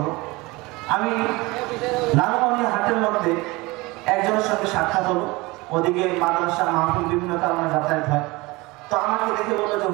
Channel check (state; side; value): quieter; left; 22.9 dB